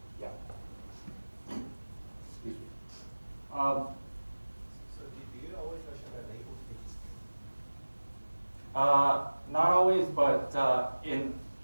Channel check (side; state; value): both; inverted; correlation -1.00